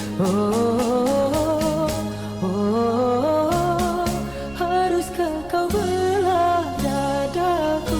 Oh, oh, haruskah kau belah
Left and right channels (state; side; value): noise; right; rumble, 19 dB below the sound